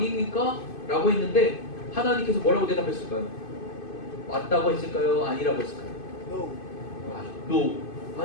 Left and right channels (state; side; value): late; right; 2.5 ms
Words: 라고 했는데 하나님께서 뭐라고 대답했을까요? 맞다고 했을까요? 아니라고 했을까요? No.